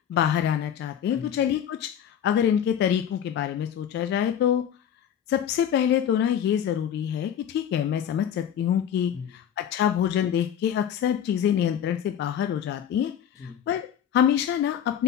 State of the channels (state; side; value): quieter; right; 9.3 dB